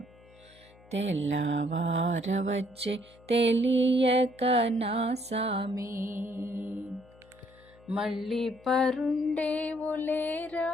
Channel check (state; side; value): noise; left; hum, 26 dB below the sound